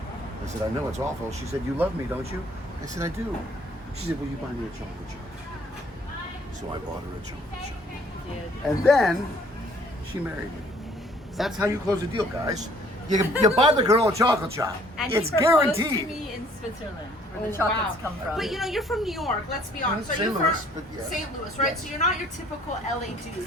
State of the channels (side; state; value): both; normal; correlation 0.59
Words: I said, "I know it's awful." She said, "You love me, don't you?" I said, "I do." She said, "Will you buy me a chocolate chip?" So I bought her a chocolate chip. And then she married me. That's how you close a deal, guys. You buy the girl a chocolate chop. And It's he proposed to guaranteed. me in Switzerland, where the chocolates come from. But you're from New York. Let's be honest. St. Are you Louis, from but yes. St. Louis, right? Yes. So you're not your typical LA